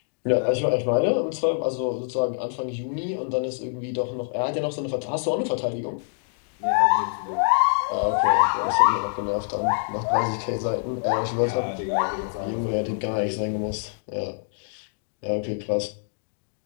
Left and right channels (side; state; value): right; silent; digital silence